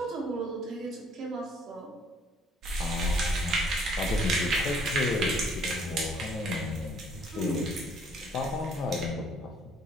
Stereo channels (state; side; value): normal; both; correlation 0.62